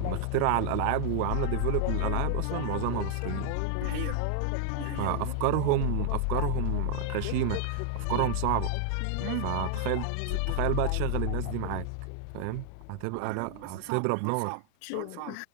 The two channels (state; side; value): different; both; correlation -0.01